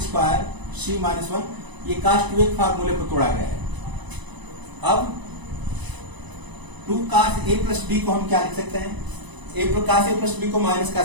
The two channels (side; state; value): left; late; 1.0 ms